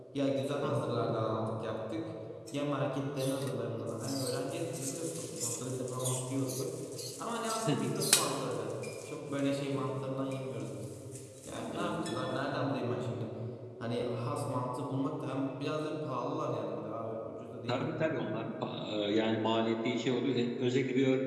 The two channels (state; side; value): identical; both; correlation 1.00